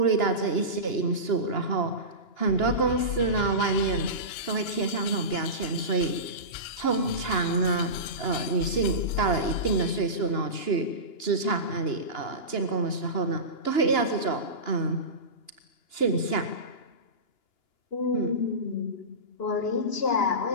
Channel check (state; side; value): late; right; 2.9 ms